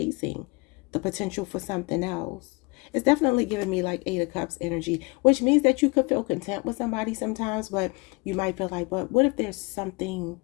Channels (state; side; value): quieter; right; 27.5 dB